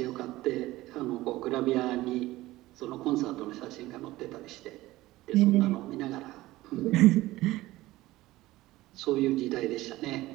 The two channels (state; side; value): quieter; left; 17.7 dB